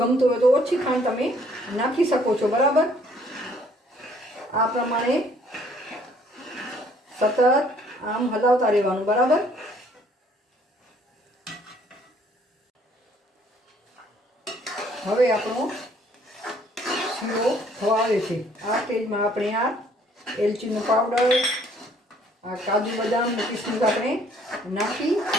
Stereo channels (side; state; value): both; normal; correlation 0.61